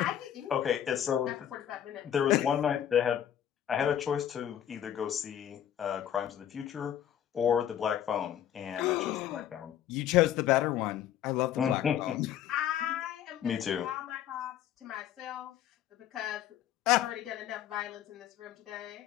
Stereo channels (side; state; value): right; quieter; 10.5 dB